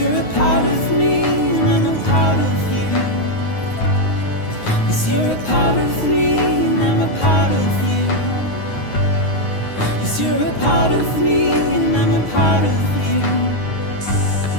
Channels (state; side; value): late; right; 9.5 ms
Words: a part of me and I'm a part of you. Yes, you're a part of me and I'm a part of you. Yes, you're a part of me and I'm a part of you.